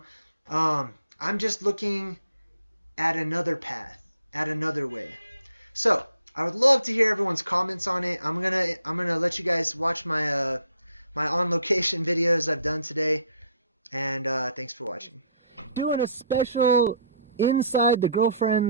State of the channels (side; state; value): both; inverted; correlation -0.62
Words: I'm just looking at another path, at another way. So I would love to hear everyone's comments on it. I'm gonna let you guys watch my my on location videos I've done today, and thanks for watching. Doing a special inside the